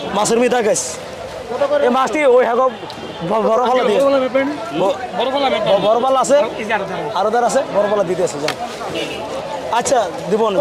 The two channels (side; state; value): both; identical; correlation 1.00